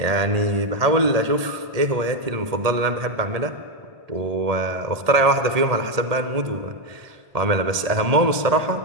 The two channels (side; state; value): left; late; 1.7 ms